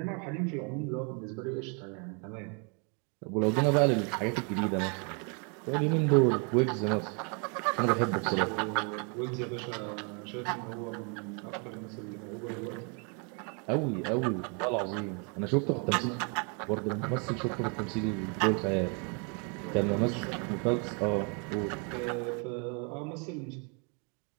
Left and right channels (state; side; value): quieter; left; 36.3 dB